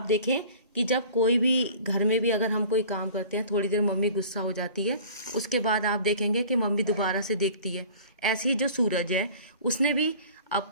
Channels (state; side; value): inverted; both; correlation -0.44